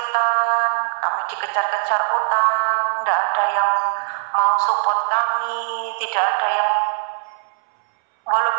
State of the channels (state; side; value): silent; left; 66 dB below the other